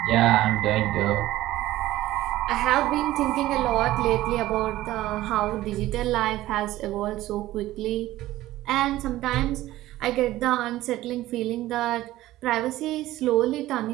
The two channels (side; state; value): left; quieter; 15.7 dB